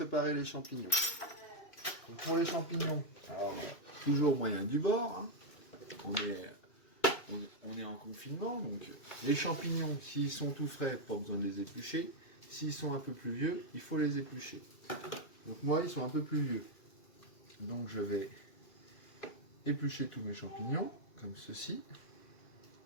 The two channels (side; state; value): right; late; 2.5 ms